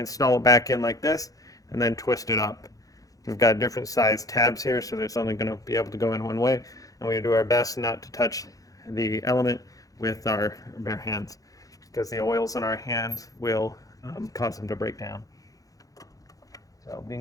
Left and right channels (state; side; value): late; right; 0.17 ms